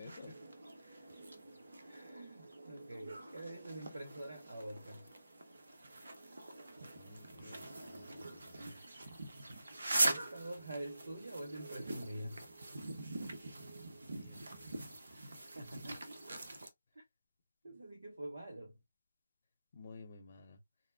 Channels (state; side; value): inverted; both; correlation -0.91